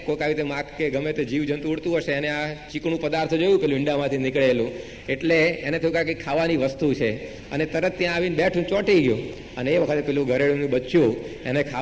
કોઈક આવી રીતે માખ કે ગમે તે જીવજંતુ ઉડતું હશે એને આ ચીકણું પદાર્થ જોયું પેલું ઈંડામાંથી નીકળેલું, એટલે એને થયું કે કંઈક ખાવાની વસ્તુ છે અને તરત ત્યાં આવીને બેઠું ચોંટી ગયું. અને એ વખતે પેલું ગરેડુનું બચ્ચું એને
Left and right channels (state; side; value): identical; both; correlation 1.00